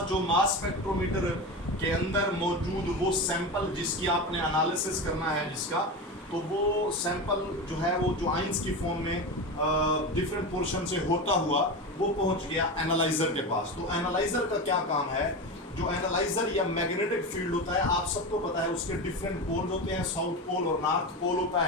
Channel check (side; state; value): both; normal; correlation 0.23